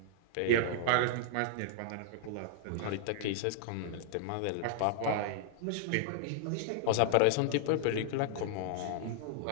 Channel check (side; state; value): both; different; correlation -0.01